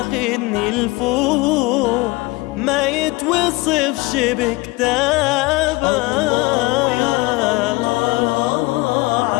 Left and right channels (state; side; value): quieter; right; 22.8 dB